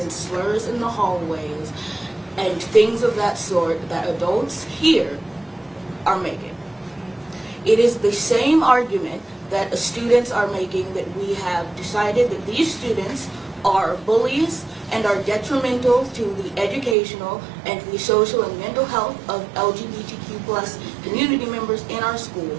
slurs in the hallways and things of that sort that adults here are making. It is the same argument that students are making, that we have decided that these students are bullies and are detrimental to the educational and the social and mental health of LGBTQ+ community members in our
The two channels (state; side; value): drops out; left; at 16.9 s